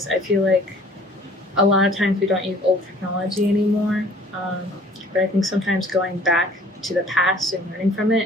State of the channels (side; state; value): both; normal; correlation 0.53